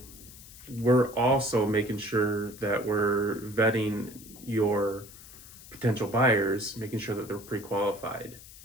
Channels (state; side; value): noise; left; hiss, 18 dB below the sound